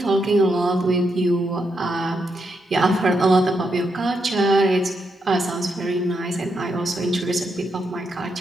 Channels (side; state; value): both; normal; correlation 0.81